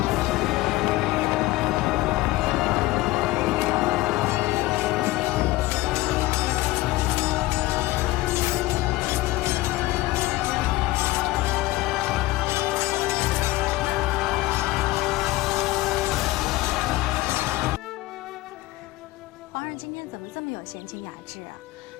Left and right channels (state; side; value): quieter; right; 18.3 dB